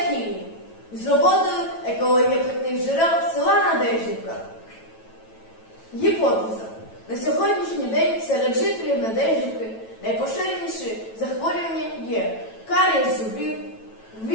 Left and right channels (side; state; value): right; late; 9.1 ms